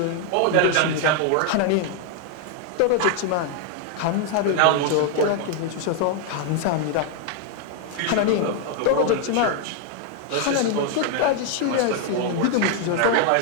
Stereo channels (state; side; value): different; both; correlation 0.00